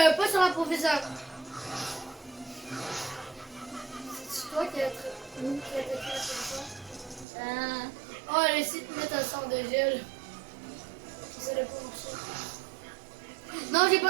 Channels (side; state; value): left; drops out; at 7.2 s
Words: pas sur la professeure. C'est toi qui as attaqué la professeure. Oh, elle essaie de mettre un sort de gel. Ça n'a pas marché. Non, j'ai